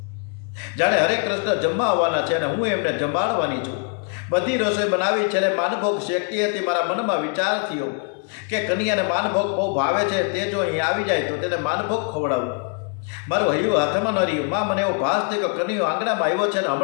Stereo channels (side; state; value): right; quieter; 38.0 dB